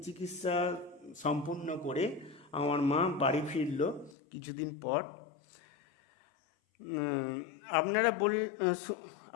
চিকিৎসা সম্পূর্ণ করে আমার মা বাড়ি ফিরল কিছুদিন পর। উম, আপনারা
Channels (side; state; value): right; drops out; at 4.2 s